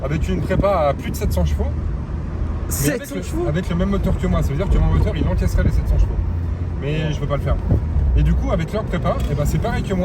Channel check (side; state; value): both; identical; correlation 1.00